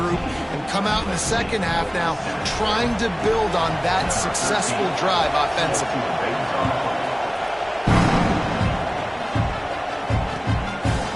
and come out in the second half now trying to build on that successful drive offensively.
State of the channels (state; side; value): identical; both; correlation 1.00